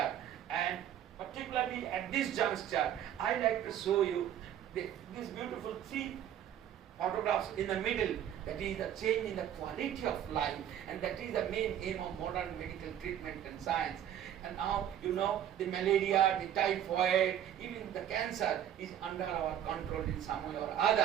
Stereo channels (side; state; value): left; quieter; 10.4 dB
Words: And particularly at this juncture, I like to show you this beautiful 3 photographs in the middle. That is the change in the quality of life, and that is the main aim of modern medical treatment and science. And now you know the malaria, the typhoid, even the cancer is under our control in some way or